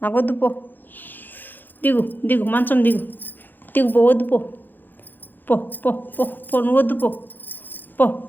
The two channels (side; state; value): right; late; 0.089 ms